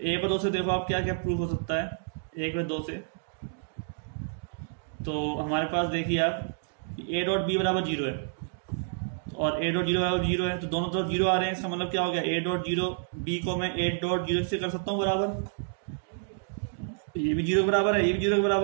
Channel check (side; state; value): left; silent; digital silence